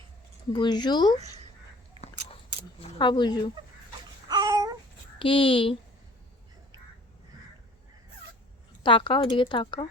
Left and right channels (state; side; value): normal; both; correlation 0.48